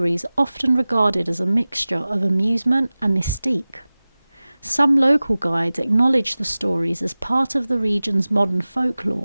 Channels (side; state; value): both; inverted; correlation -0.98